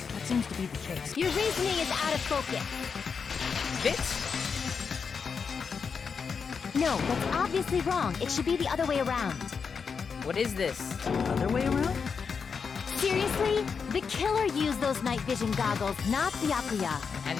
That seems to be the case. Your reasoning is out of focus. Bitch. No, that's obviously wrong. It should be the other way around. What is this? Other way around? Seriously? The killer used those night vision goggles, not Byakuya. How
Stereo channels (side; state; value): right; quieter; 5.8 dB